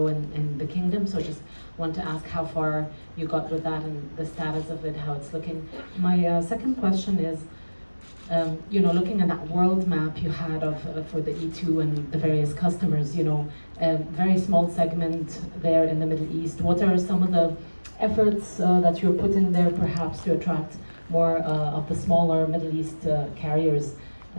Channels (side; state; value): both; inverted; correlation -1.00